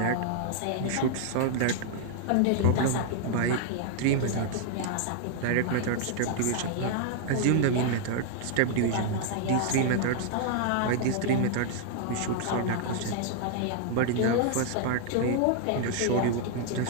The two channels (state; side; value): different; both; correlation 0.00